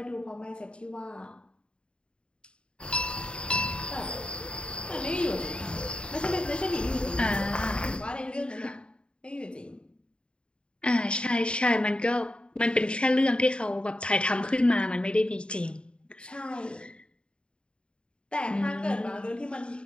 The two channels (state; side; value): late; right; 0.053 ms